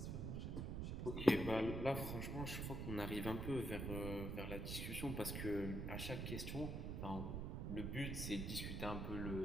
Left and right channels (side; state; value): right; noise; rumble, 2 dB below the sound